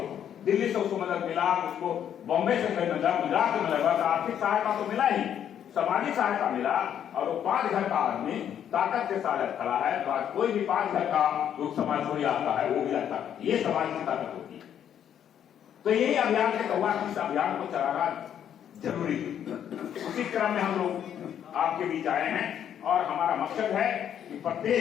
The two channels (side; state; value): right; quieter; 9.5 dB